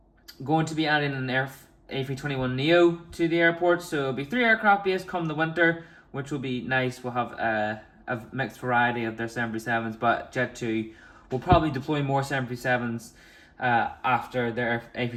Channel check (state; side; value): identical; both; correlation 1.00